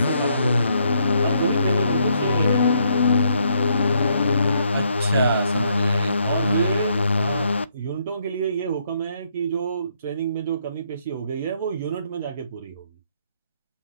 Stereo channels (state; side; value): inverted; both; correlation -0.73